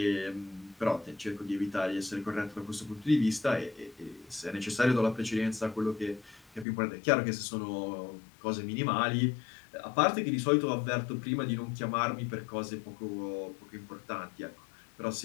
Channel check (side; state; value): right; drops out; at 6.7 s